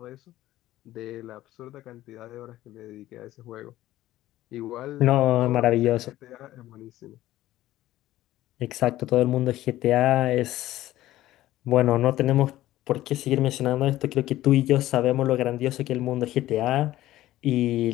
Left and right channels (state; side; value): quieter; right; 15.0 dB